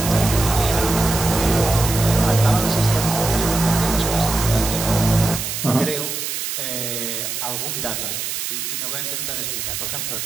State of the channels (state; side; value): noise; right; hiss, 4 dB below the sound